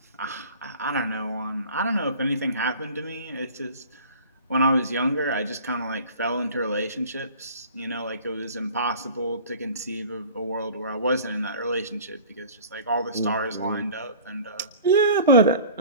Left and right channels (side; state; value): both; inverted; correlation -0.44